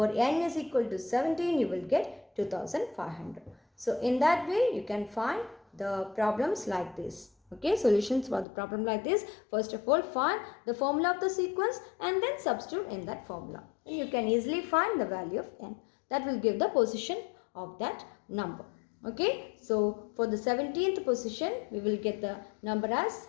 n is equal to 17, you will get 2500. So in that way, you can find the problems like this. Okay, solutions for the problem like this. First of all, find the formula of the sequence and then substitute in that formula. And you can easily find the value of n. That will give the position of that number. Okay, so for the 17th position, we will get the number as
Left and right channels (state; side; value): drops out; right; at 8.5 s